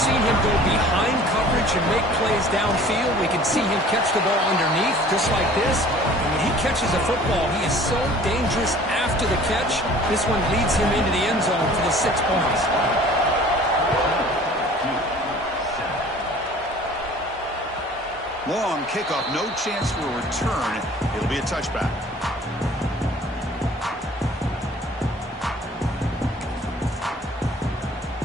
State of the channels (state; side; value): normal; both; correlation 0.49